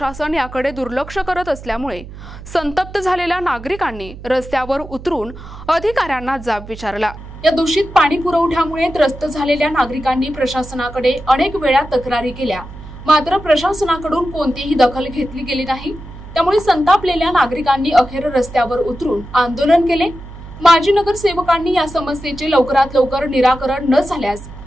याकडे दुर्लक्ष करत असल्यामुळे संतप्त झालेल्या नागरिकांनी रस्त्यावर उतरून अधिकाऱ्यांना जाब विचारला। या दूषित पाणी पुरवठ्यामुळे त्रस्त झालेल्या नागरिकांनी प्रशासनाकडे अनेक वेळा तक्रारी केल्या, मात्र प्रशासनाकडून कोणतीही दखल घेतली गेली नाही। त्यामुळे संतापलेल्या नागरिकांनी अखेर रस्त्यावर उतरून आंदोलन केले। माजी नगरसेवकांनी या समस्येचे लवकरात लवकर निराकरण न झाल्यास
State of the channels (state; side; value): noise; right; hum, 15 dB below the sound